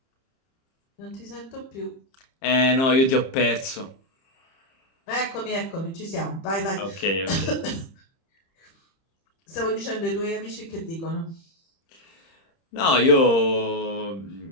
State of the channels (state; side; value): late; right; 30 ms